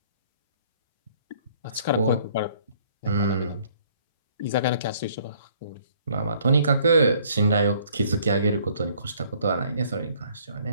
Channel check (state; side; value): inverted; both; correlation -0.61